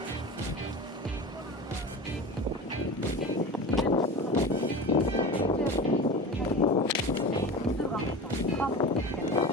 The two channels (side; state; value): both; normal; correlation 0.31